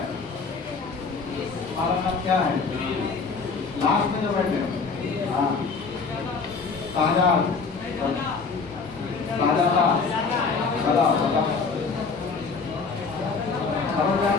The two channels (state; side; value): quieter; right; 4.7 dB